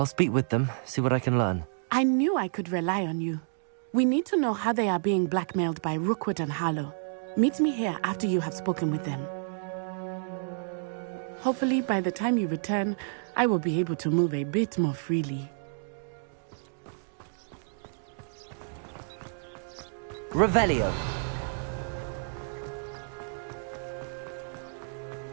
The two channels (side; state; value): left; silent; digital silence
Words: speak with them, see what I can learn. I knew I could rely on you. We need to know how they are being blackmailed by Rookwood and Harlow. Meet me here after you have spoken with them. Hopefully, by the time you return, I will be able to move a bit more freely. Revelio.